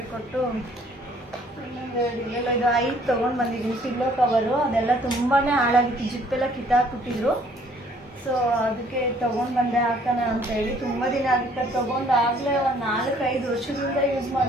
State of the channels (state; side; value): normal; both; correlation 0.60